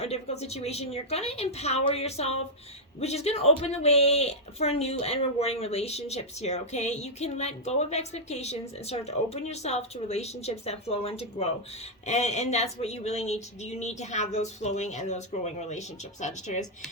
or difficult situation, you're going to empower yourself, which is going to open the way for new and rewarding relationships here, okay? You can let go of expectations and start to open yourself to relationships that flow and to grow. And that's what you really need to do. You need to have those flowing and those growing relationships, Sagittarius.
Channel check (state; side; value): normal; both; correlation -0.05